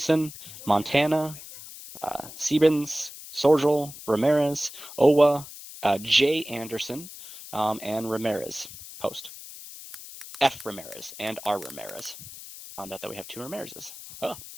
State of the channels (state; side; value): noise; left; hiss, 14 dB below the sound